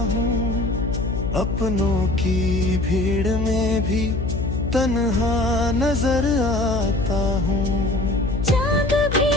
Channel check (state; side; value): noise; left; hum, 3 dB below the sound